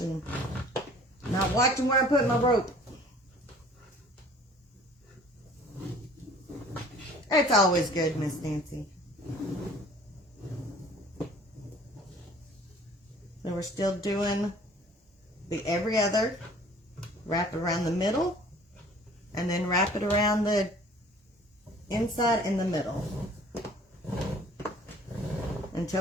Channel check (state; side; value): normal; both; correlation 0.51